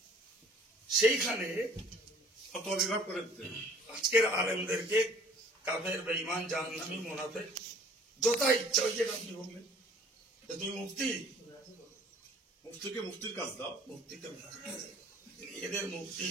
সেইখানে অত অভিভাব করে দিতেন। আজকের আলেমদেরকে কাফের বা ইমান জাহান্নামী মুনাফিক যথা ইচ্ছা, ওই যেটা আপনি বললেন, তুমি মুফতিকে মুফতির কাজ দাও, মুফতিকে এদের মুফতি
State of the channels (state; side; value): normal; both; correlation 0.53